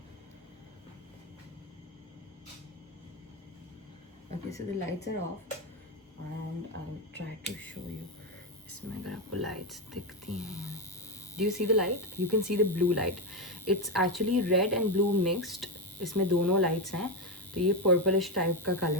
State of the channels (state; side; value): normal; both; correlation 0.10